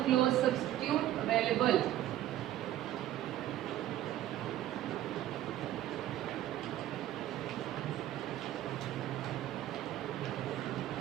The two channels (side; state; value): left; quieter; 13.3 dB